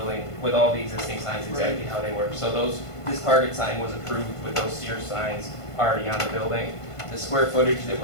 with all the existing signs exactly how they were. So this Target sign was approved with those Sears signs already on the building. The square footage that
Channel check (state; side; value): late; right; 1.5 ms